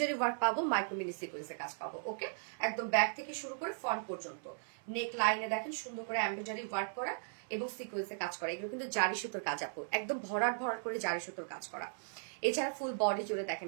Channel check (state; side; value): silent; left; 53 dB below the other